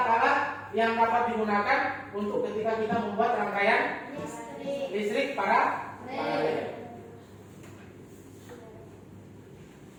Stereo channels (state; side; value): identical; both; correlation 1.00